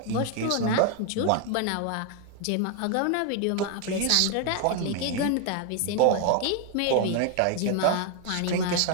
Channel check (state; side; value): different; both; correlation 0.00